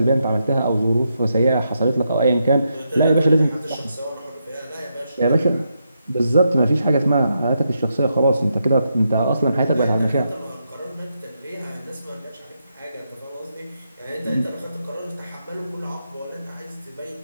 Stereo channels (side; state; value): both; inverted; correlation -0.82